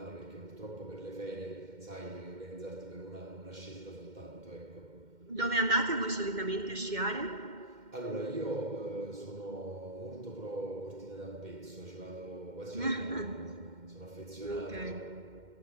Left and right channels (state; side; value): late; left; 2.1 ms